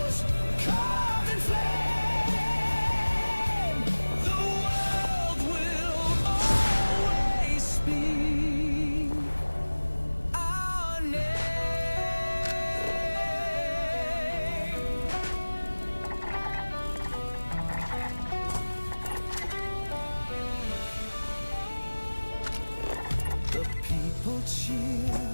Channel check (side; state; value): both; inverted; correlation -1.00